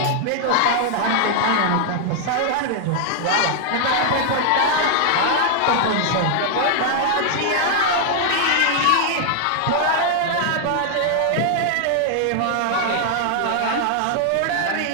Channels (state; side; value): different; both; correlation 0.00